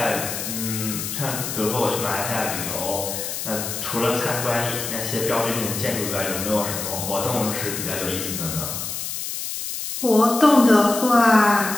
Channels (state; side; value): noise; left; hiss, 5 dB below the sound